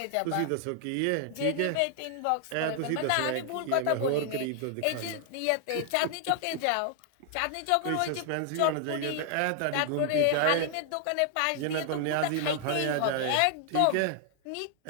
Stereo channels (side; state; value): both; different; correlation 0.00